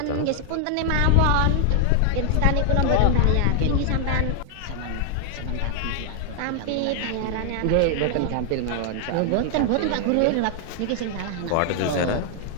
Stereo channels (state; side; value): different; both; correlation 0.00